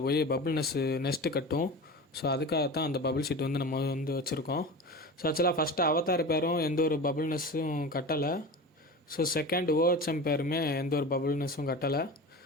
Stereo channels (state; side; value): normal; both; correlation 0.31